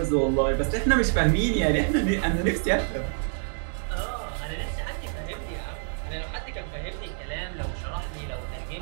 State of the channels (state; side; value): silent; left; digital silence